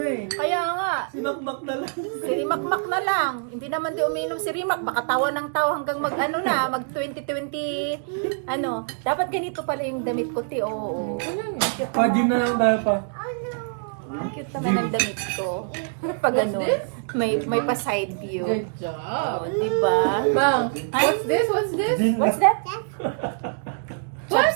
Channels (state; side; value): silent; left; digital silence